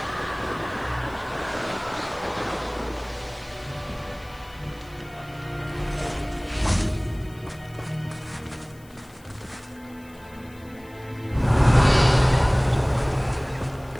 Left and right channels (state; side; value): noise; left; hiss, 27 dB below the sound